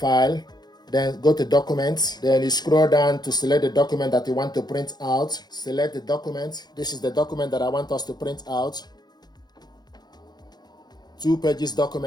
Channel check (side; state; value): right; late; 0.20 ms